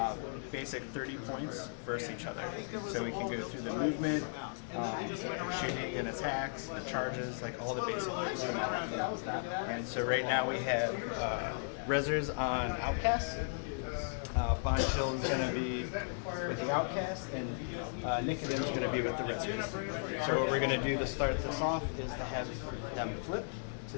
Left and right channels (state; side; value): silent; right; digital silence